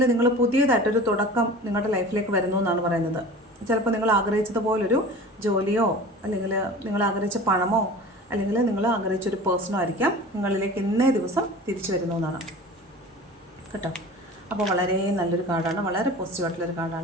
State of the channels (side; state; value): both; normal; correlation 0.38